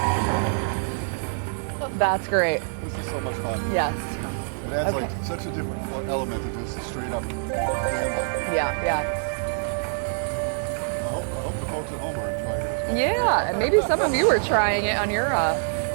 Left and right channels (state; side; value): silent; left; digital silence